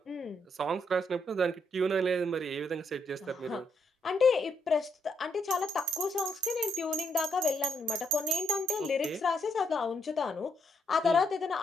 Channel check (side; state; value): both; normal; correlation 0.74